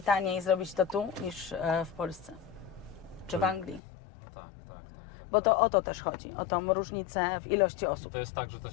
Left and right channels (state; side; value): drops out; right; at 3.8 s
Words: taniej zrobić to tu niż w Polsce czy w Anglii. No tak. Bo to tak. o to też chodzi, o tą różnicę w ilości I osób. to jest tak, że to